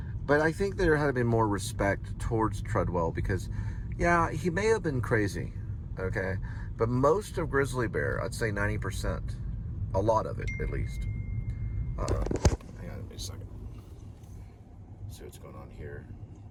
But I think there had been more respect towards Treadwell because, yeah, he may have been crazy, okay? But most of grizzly bear, I'd say 90%, a lot of it at least. Hang on a second. See what's going on here.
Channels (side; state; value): both; identical; correlation 1.00